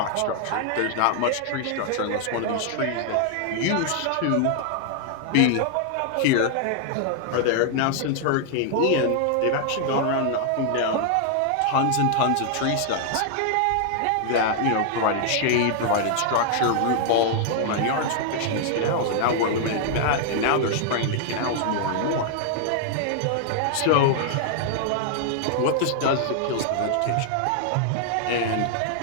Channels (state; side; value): different; both; correlation 0.00